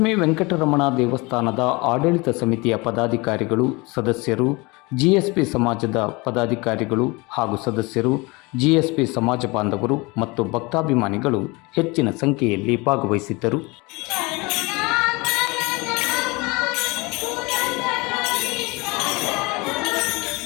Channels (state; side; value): quieter; right; 25.5 dB